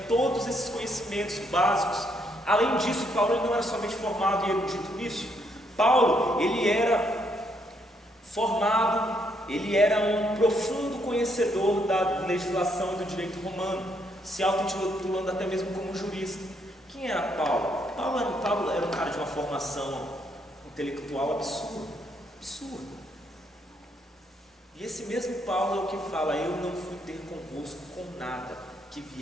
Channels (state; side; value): normal; both; correlation 0.73